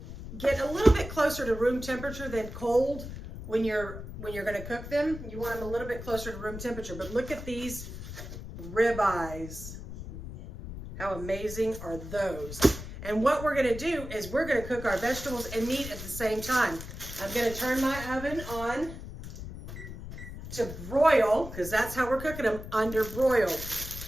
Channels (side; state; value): left; noise; rumble, 10 dB below the sound